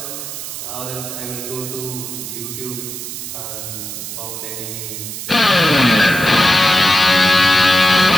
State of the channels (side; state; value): right; noise; hiss, 8 dB below the sound